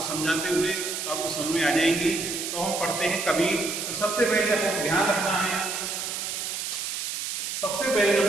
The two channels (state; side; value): noise; right; hiss, 4 dB below the sound